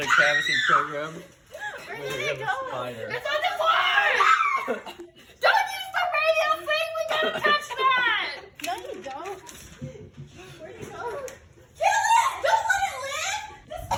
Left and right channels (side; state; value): both; identical; correlation 1.00